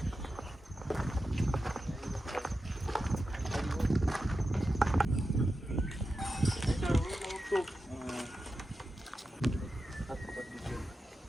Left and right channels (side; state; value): both; normal; correlation 0.91